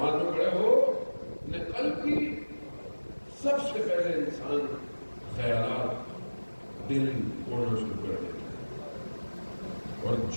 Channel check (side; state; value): both; inverted; correlation -1.00